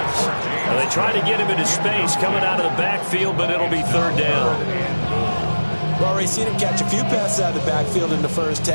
Now they try to get him into space coming out of the backfield, but it'll be 3rd down. We've already seen him catch a few passes out of the backfield in the first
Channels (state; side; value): inverted; both; correlation -1.00